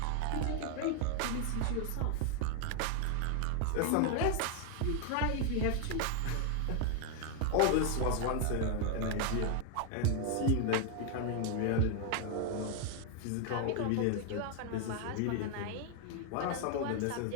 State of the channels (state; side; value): different; both; correlation 0.00